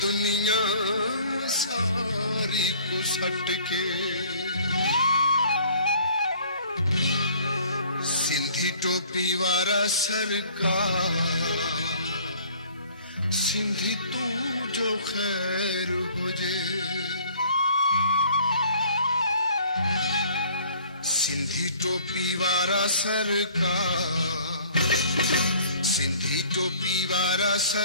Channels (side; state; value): both; inverted; correlation -0.54